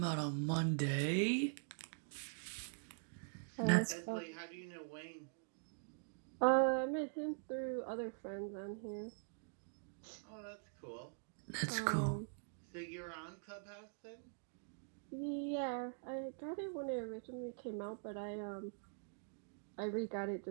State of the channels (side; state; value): left; silent; digital silence